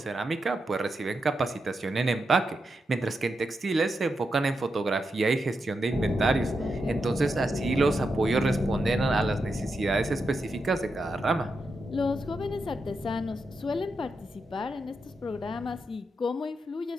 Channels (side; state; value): both; normal; correlation 0.86